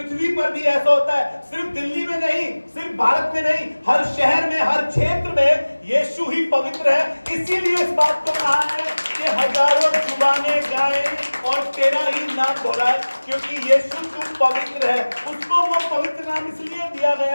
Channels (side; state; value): both; inverted; correlation -1.00